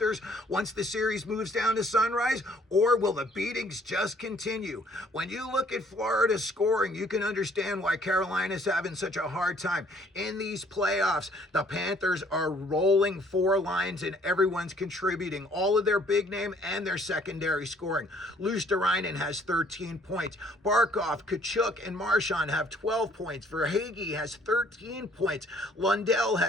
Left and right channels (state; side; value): normal; both; correlation 0.61